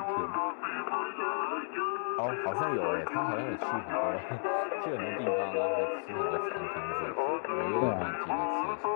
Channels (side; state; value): right; silent; digital silence